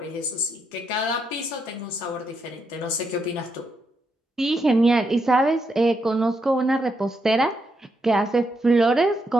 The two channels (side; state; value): both; normal; correlation 0.80